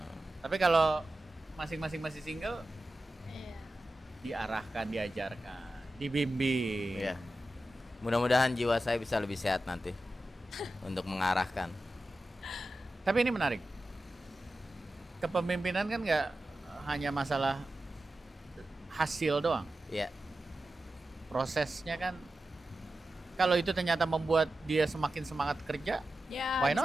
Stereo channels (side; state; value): both; normal; correlation 0.92